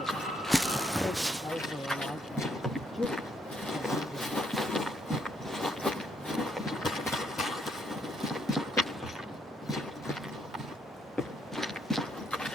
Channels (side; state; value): both; normal; correlation 0.72